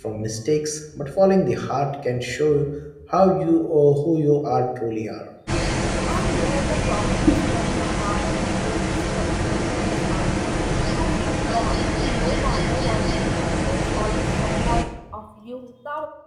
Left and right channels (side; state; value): both; identical; correlation 1.00